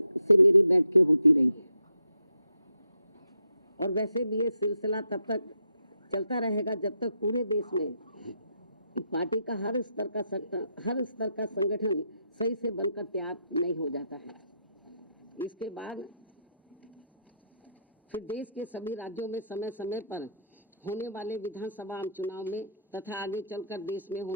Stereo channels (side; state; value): both; inverted; correlation -0.77